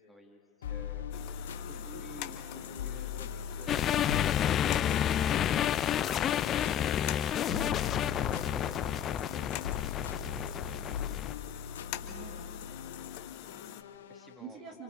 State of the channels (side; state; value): right; quieter; 9.5 dB